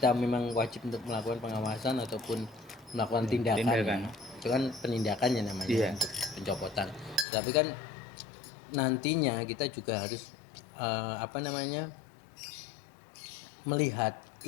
memang wajib untuk melakukan pengawasan ataupun melakukan tindakan. Ya. Itu kan penindakannya namanya untuk pencopotan. Tapi kan nantinya kita juga harus melihat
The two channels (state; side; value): drops out; right; at 7.2 s